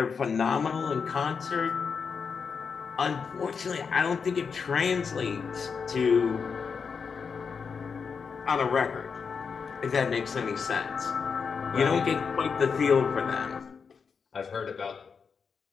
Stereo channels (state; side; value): quieter; right; 5.8 dB